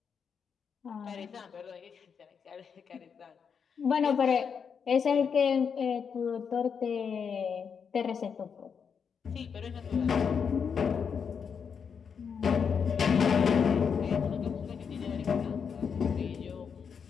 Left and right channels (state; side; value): quieter; right; 6.6 dB